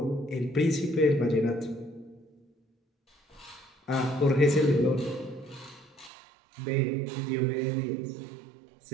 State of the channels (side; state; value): left; drops out; at 6.1 s